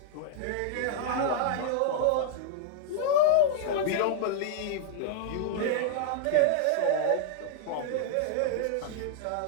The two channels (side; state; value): both; different; correlation -0.01